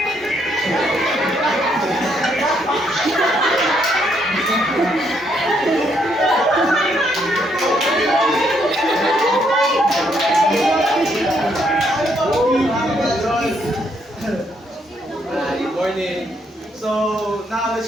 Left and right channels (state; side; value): normal; both; correlation 0.73